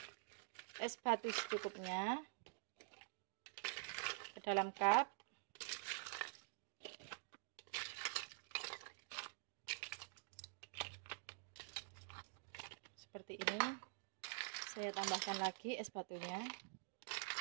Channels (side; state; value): left; silent; digital silence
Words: es batu secukupnya ke dalam cup. Seperti ini. Saya tambahkan lagi es batunya.